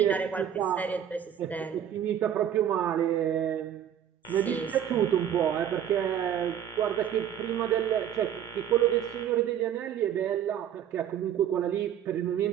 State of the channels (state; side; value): quieter; left; 9.8 dB